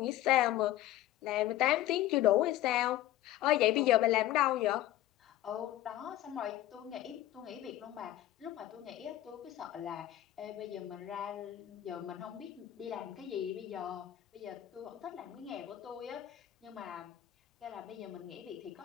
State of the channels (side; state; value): right; quieter; 14.0 dB